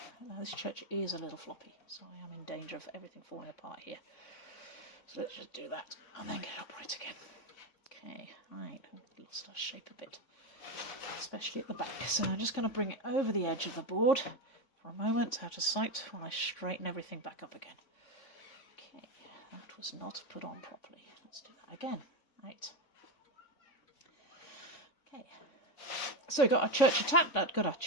Now this church is a little floppy, so I am in danger of everything falling apart here. So let's just do that and then get it upright again. Okay, right, lost our shape a bit, especially at the back. So I'm just going to bring it over the edge of the board for a moment, out of sight, while I straighten everything back up again. Okay, that was not put on properly. Let's do that again. Right. Okay. So we've got our church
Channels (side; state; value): right; late; 3.5 ms